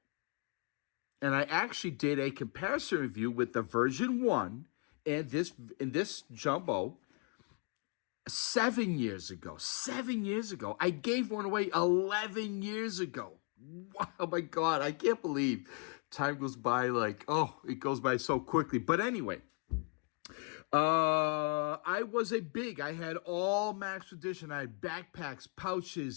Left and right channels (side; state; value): right; quieter; 36.5 dB